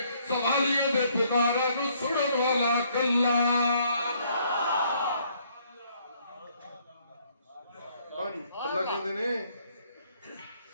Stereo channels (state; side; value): inverted; both; correlation -0.67